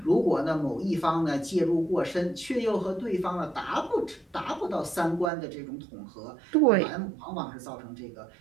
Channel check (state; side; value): drops out; left; at 5.3 s